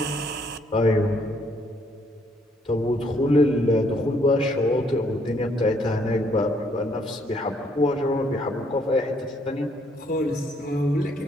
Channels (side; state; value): both; normal; correlation 0.69